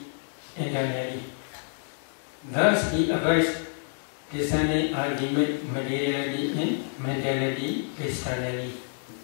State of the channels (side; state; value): right; silent; digital silence